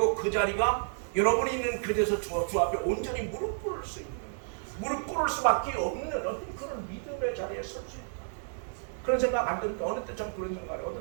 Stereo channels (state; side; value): silent; left; digital silence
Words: 그 자리가 여러분이 있는 그곳에서 주 앞에 온전히 무릎 꿇을 수 있는 무릎 꿇을 수밖에 없는 어떤 그런 믿음의 자리에 설 수 있다. 그런 생각 안 드는데 어느 때 참 그런 생각을